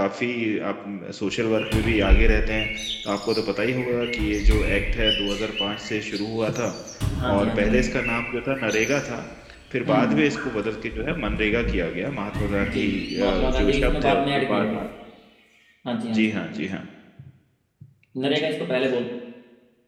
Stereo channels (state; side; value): identical; both; correlation 1.00